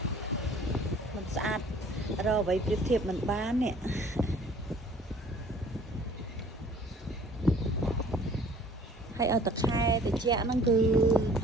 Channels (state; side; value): normal; both; correlation 0.53